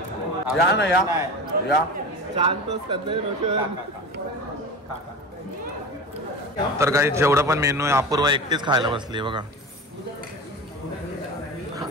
या ना या तर काही जेवढं पण मेनू आहे अपूर्वा एकटीच खायला बसली बघा.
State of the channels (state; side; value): normal; both; correlation 0.31